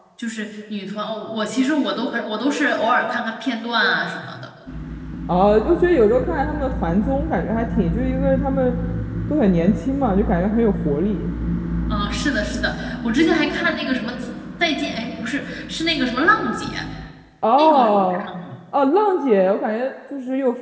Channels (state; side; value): identical; both; correlation 1.00